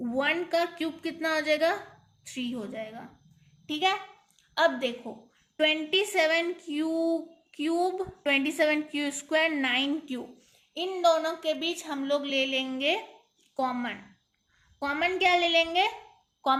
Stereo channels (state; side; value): identical; both; correlation 1.00